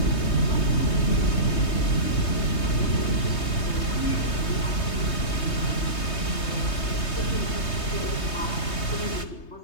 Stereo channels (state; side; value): late; right; 3.2 ms